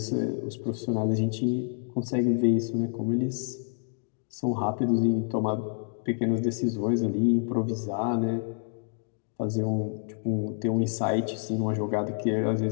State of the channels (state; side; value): silent; right; 59 dB below the other